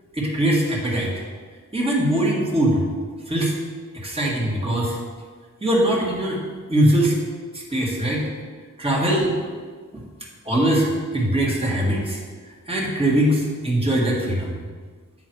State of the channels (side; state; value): both; normal; correlation 0.62